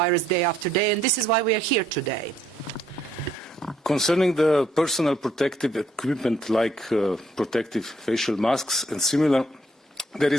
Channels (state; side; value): normal; both; correlation 0.68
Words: day after day, and this is why we are here today. Concerning the personal protective equipment like protective facial masks and similar, there